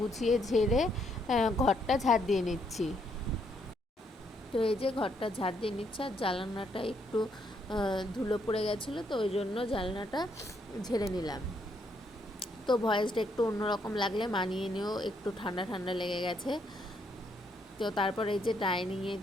ঝেড়ে ঘরটা ঝাড় দিয়ে নিচ্ছি। তো এই যে ঘরটা ঝাড় দিয়ে নিচ্ছে, আর জানলাটা একটু ধুলো পড়ে গেছিলো, তো ওই জন্য জানলাটা ঝেড়ে নিলাম। তো ভয়েসটা একটু অন্যরকম লাগলে মানিয়ে নিও, একটু ঠান্ডা ঠান্ডা লেগে গেছে। তো তারপর এই যে ডাইনিংয়ে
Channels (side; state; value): both; normal; correlation 0.73